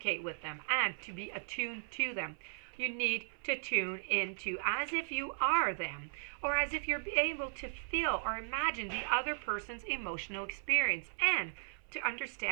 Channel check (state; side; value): silent; left; 53 dB below the other